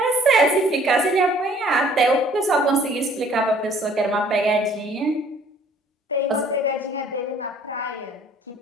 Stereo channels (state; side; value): normal; both; correlation 0.57